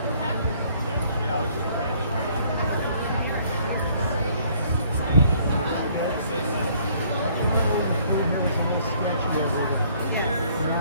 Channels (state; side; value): inverted; both; correlation -0.62